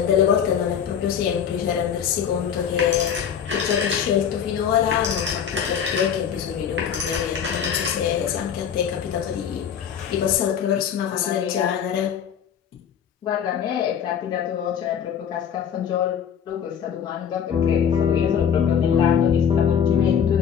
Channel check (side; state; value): right; quieter; 8.1 dB